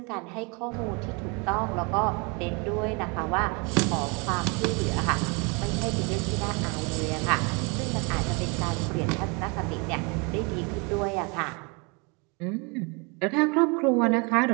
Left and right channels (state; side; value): quieter; left; 31.0 dB